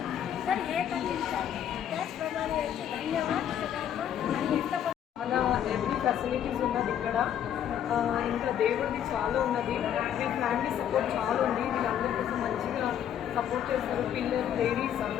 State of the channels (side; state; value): right; quieter; 9.9 dB